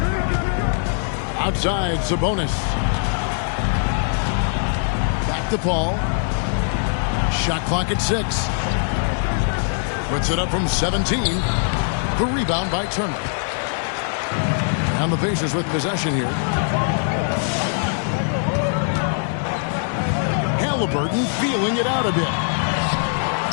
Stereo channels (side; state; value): right; silent; digital silence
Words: Outside, Sabonis. Back to Paul. Shot clock at 6. Puts it up from 17. The rebound by Turner. And the Pacers with possession here. Halliburton feeling it out a bit.